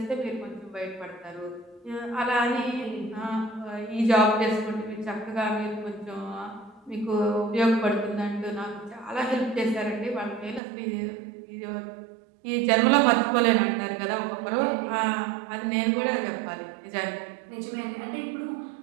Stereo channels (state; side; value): drops out; left; at 10.6 s